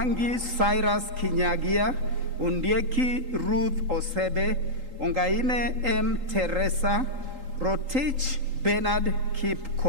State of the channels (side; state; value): left; late; 3.8 ms